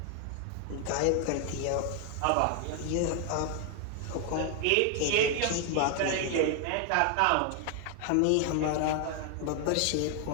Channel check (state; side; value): different; both; correlation 0.00